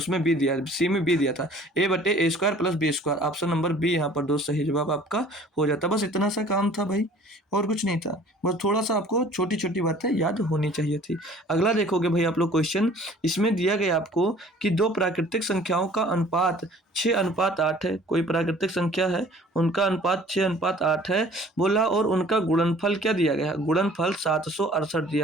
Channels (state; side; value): normal; both; correlation 0.51